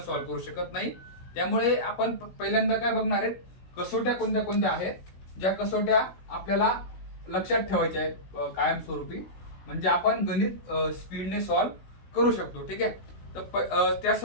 करू शकत नाही. त्यामुळे आपण पहिल्यांदा काय बघणार आहेत, कसोट्या कोणत्या कोणत्या आहेत, ज्या कसोट्या आपल्याला लक्षात ठेवायच्या आहेत कायमस्वरूपी, म्हणजे आपण गणित स्पीडने सॉल्व्ह करू शकतो. ठीक आहे, तर त्या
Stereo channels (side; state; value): right; late; 16 ms